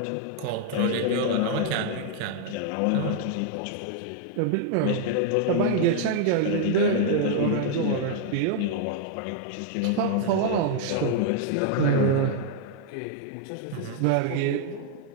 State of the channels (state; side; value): different; both; correlation 0.00